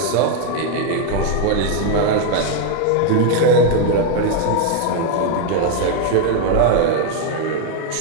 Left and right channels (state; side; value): different; both; correlation 0.01